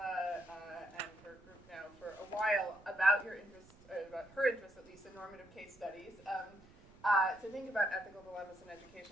and her group now for a while about your interest, about her interest at least in normative case studies, to think about ethical dilemmas in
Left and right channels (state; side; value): noise; right; rumble, 25 dB below the sound